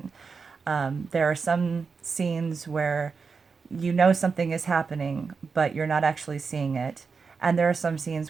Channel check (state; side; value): quieter; left; 5.1 dB